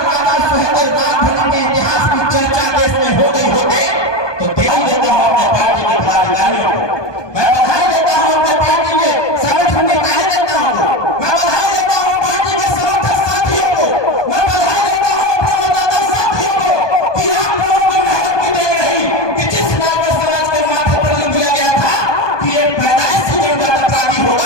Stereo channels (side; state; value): right; late; 1.2 ms